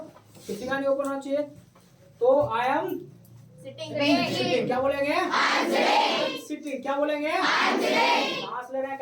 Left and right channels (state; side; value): identical; both; correlation 1.00